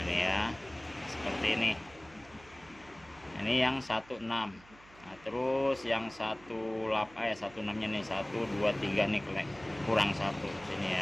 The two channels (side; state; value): right; noise; hum, 24 dB below the sound